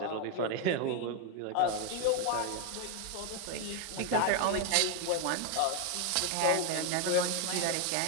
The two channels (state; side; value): different; both; correlation 0.01